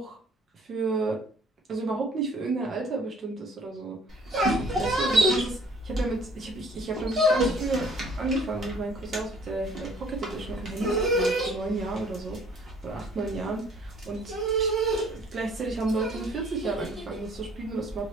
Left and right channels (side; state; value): both; normal; correlation 0.57